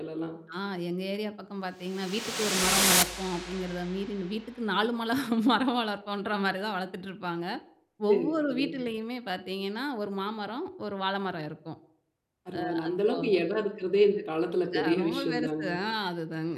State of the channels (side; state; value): both; identical; correlation 1.00